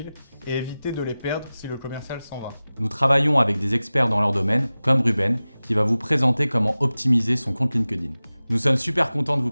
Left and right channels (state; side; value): inverted; both; correlation -0.97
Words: et éviter de les perdre si le commercial s'en va. Nous travaillons avec des experts dans leur domaine, comme Ruben, qui va vous présenter comment optimiser son compte LinkedIn. Nous sommes super contents de vous